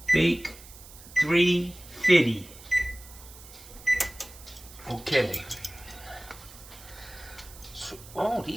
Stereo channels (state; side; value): noise; right; hiss, 18 dB below the sound